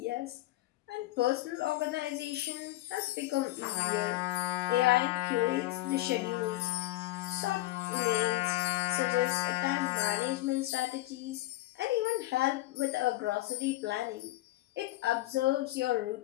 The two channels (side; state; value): right; quieter; 17.1 dB